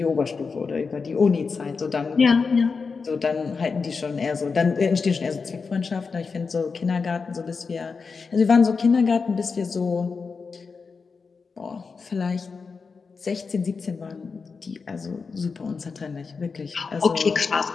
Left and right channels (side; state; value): right; quieter; 4.9 dB